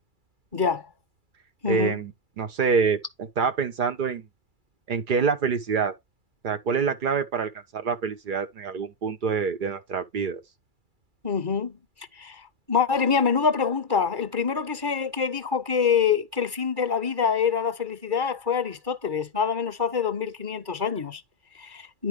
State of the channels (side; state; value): left; late; 2.3 ms